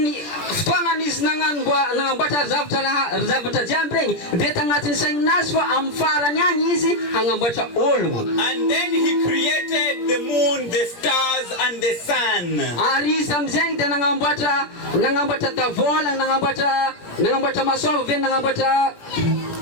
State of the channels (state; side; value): late; right; 17 ms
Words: ftoanga is nangambata zavatra jambreng detangatin sang naswa am farany any izy hangambatra ologno. And then he created the moon, the stars and the sun. Ary izy amizay de nangambatra tavola nangambatra masoava ve nangambatra